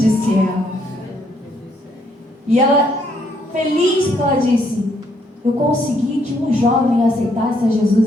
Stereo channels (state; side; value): normal; both; correlation 0.71